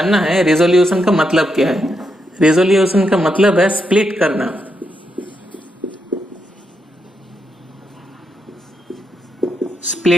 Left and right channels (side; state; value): both; normal; correlation 0.82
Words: है रेजोल्यूशन का मतलब क्या है। रेजोल्यूशन का मतलब है स्प्लिट करना।